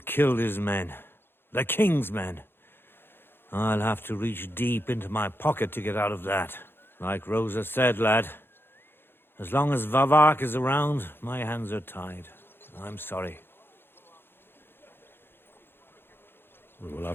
killed his men. The king's men. I'll have to reach deep into my pocket to get out of that. Like Rosa said, lad, as long as Vavak is around, my hands are tied. I'm sorry. We'll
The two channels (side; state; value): right; late; 0.10 ms